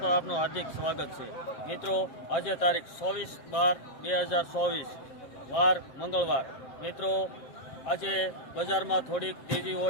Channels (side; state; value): right; late; 7.5 ms